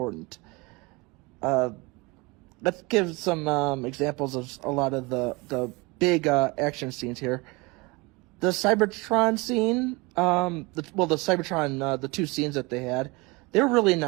Let's give some examples of a lot of the big action scenes here. The Cybertron scene, the Cybertron, the two scenes that they had, they were really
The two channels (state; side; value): quieter; left; 25.6 dB